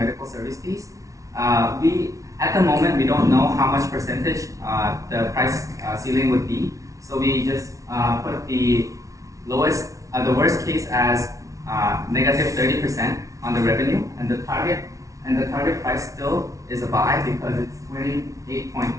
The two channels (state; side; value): late; left; 0.16 ms